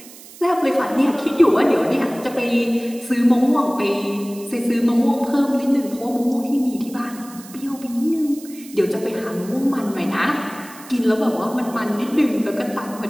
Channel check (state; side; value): noise; right; hiss, 19 dB below the sound